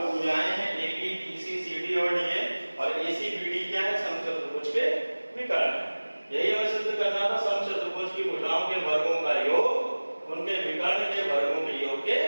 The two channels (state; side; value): inverted; both; correlation -1.00